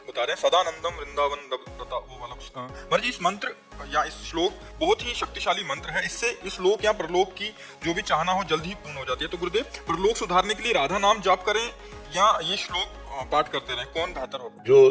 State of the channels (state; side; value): identical; both; correlation 1.00